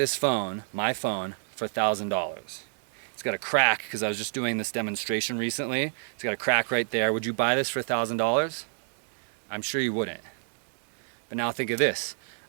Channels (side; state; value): left; silent; digital silence